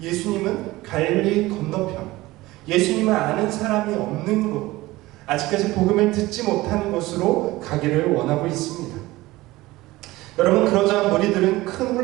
예수님은 갈릴리 건너편, 예수님을 아는 사람이 없는 곳, 아직까지 복음을 듣지 못하는 곳으로 가기를 원하고 있습니다. 여러분, 그러자 무리들은 큰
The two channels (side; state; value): left; quieter; 18.9 dB